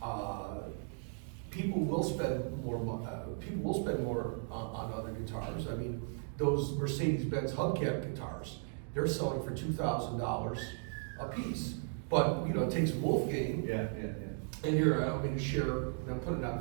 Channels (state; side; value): silent; left; 54 dB below the other